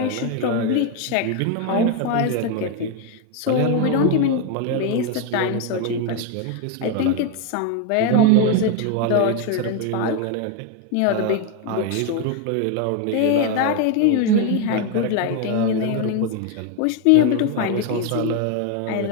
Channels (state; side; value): different; both; correlation 0.01